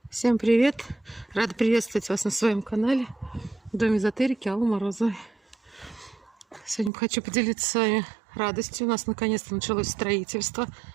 Всем привет! Рада приветствовать вас на своем канале Дом эзотерики Аллы Морозовой. Сегодня хочу поделиться с вами радостью. У нас наконец-то началось строительство.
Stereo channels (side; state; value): left; drops out; at 6.9 s